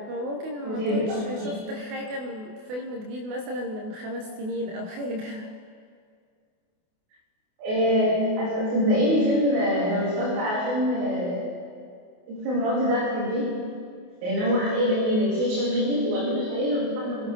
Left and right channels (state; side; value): late; left; 28 ms